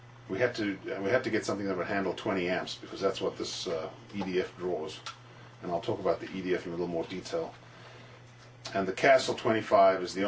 we had to get something that would handle 20 amps, because that's what this EDF draws, and I'll talk about the EDF in a little more detail. And the Castle 25 is the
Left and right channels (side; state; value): both; identical; correlation 1.00